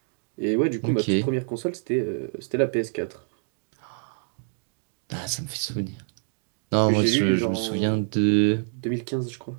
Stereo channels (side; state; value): left; silent; digital silence